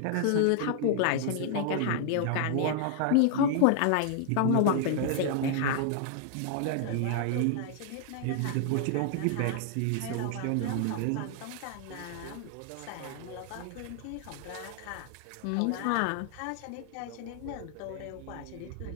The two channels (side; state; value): both; different; correlation 0.00